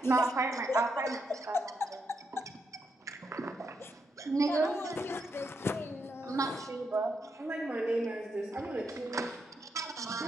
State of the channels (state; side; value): normal; both; correlation 0.81